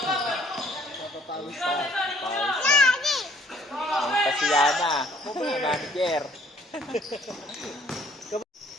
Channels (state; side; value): normal; both; correlation 0.60